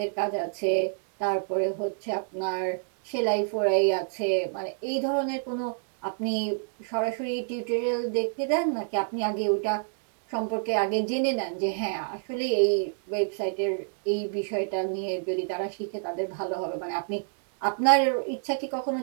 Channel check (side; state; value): left; silent; digital silence